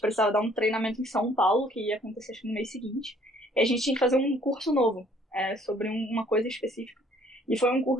precisava dar um treinamento em São Paulo, que ia acontecer acho que no mês seguinte. E a gente tinha que fazer um curso novo, sobre uma coisa específica. E foi um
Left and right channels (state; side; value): normal; both; correlation 0.60